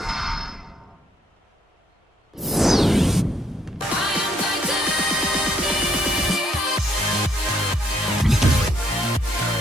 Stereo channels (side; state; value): both; normal; correlation 0.70